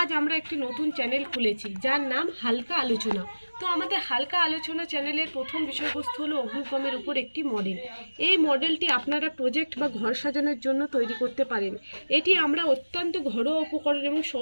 আমরা একটি নতুন চ্যানেল খুলেছি যার নাম হালকা আলোচনা। তো আমাদের হালকা আলোচনা চ্যানেলের প্রথম বিষয়বস্তু হলো অগ্নিকমের উপর একটি মডেল। এই মডেলটি আপনারা প্রজেক্ট বা ঘর সাজানোর জন্য তৈরি করতে পারেন। এটি আমরা অত্যন্ত ঘরোয়া উপকরণ এবং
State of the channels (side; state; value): both; inverted; correlation -1.00